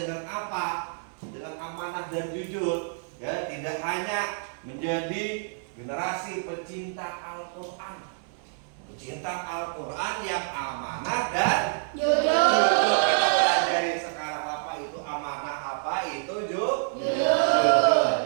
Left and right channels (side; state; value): left; silent; digital silence